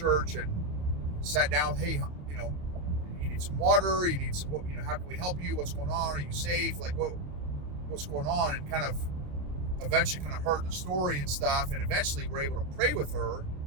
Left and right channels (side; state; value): left; late; 27 ms